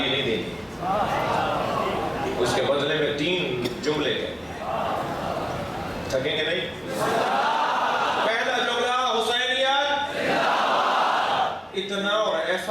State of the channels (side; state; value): both; identical; correlation 1.00